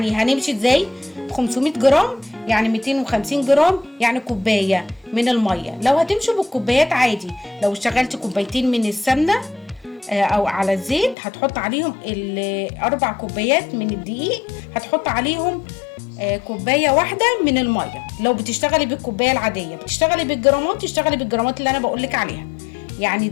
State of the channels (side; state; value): right; drops out; at 11.2 s